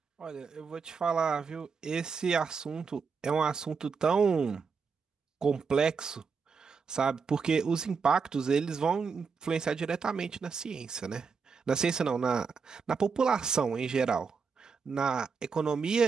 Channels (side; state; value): left; quieter; 5.4 dB